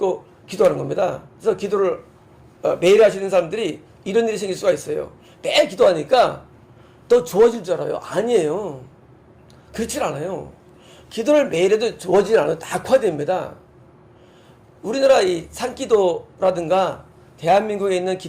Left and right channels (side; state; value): both; identical; correlation 1.00